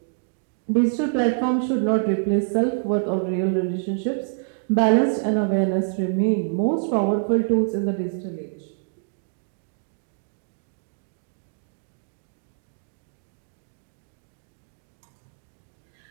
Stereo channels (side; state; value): left; silent; digital silence